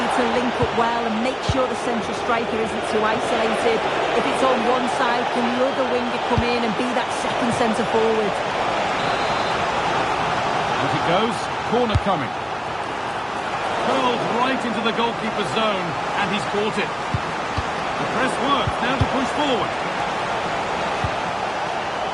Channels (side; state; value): both; identical; correlation 1.00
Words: to link up well and make sure the central striker isn't too isolated. If it's on one side, can the other winger come in and be that second centre forward? As it goes, corner coming. Curled right into the goalkeeper's zone, and he's caught it. The press works, now to push forward.